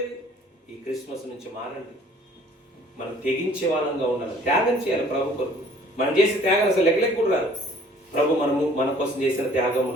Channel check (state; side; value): normal; both; correlation 0.55